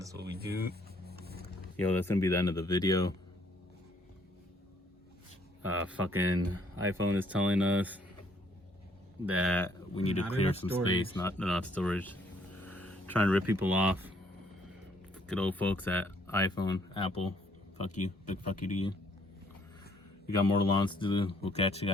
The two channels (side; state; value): both; normal; correlation 0.65